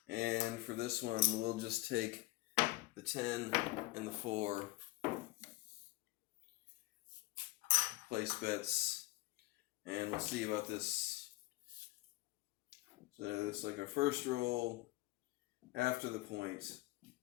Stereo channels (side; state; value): right; quieter; 19.2 dB